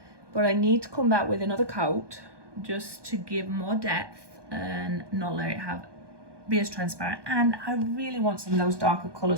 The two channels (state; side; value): late; left; 1.2 ms